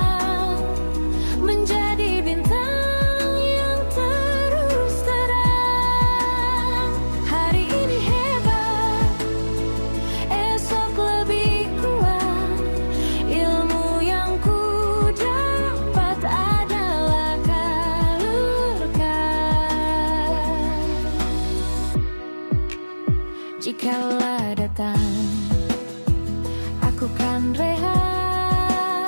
menjadi bintang yang terus terang. Hari ini hebat, esok lebih kuat. Ilmu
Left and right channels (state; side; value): inverted; both; correlation -1.00